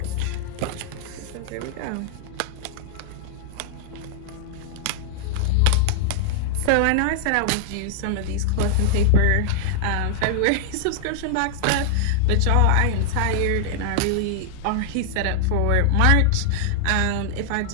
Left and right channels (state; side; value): different; both; correlation -0.01